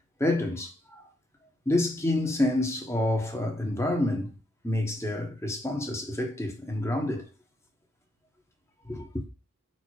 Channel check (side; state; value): both; normal; correlation 0.78